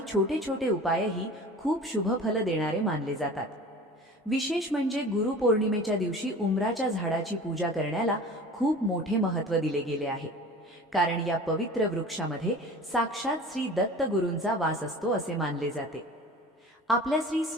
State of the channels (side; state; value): both; normal; correlation 0.40